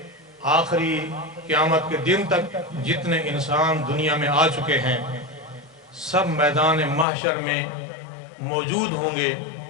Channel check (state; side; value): drops out; right; at 7.1 s